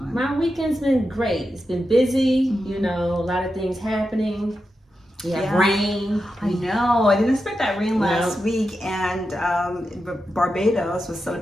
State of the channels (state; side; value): normal; both; correlation 0.89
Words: My weekend's been great. It's been busy, a lot of things happening. We have rain. I know. I didn't expect that rain last week. And Barbados was